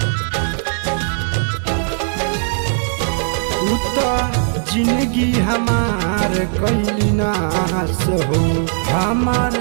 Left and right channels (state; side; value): silent; left; 65 dB below the other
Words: उता जिंदगी हमार कैली नाश हो, हमार